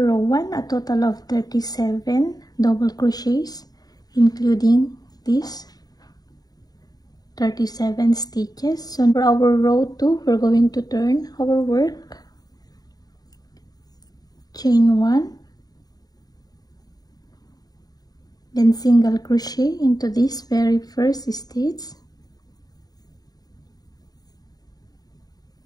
row 1, a total of 37 double crochets, including this 37 stitches. So for our row 2, we're going to turn our work. Chain 1, then single crochet into this very first stitch.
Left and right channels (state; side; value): late; right; 0.19 ms